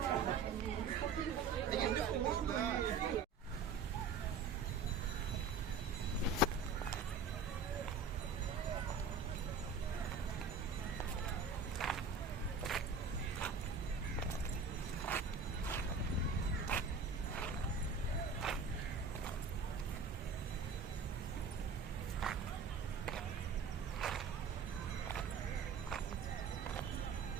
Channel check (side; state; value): left; quieter; 4.8 dB